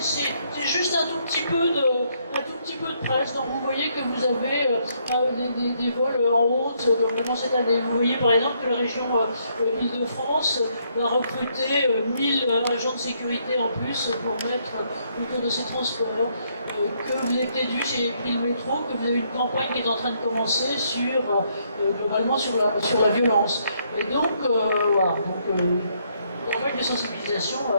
juste un tout petit peu de presse. Donc vous voyez que vous avez des vols en haute vraiment cette année. Vous voyez par exemple que la région Île-de-France va recruter 1000 agents de sécurité en plus pour mettre autour de ces transports. Que vous avez peut-être vu chez Pris le métro, que vous avez une campagne qui est en train de commencer sur globalement sur la violence. Et donc voilà. Campagne de sensibilisation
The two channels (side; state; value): both; inverted; correlation -0.72